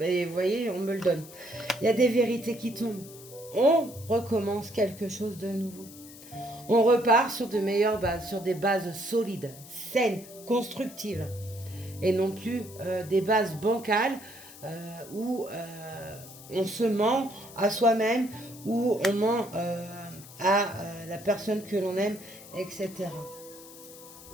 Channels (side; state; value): left; noise; hiss, 18 dB below the sound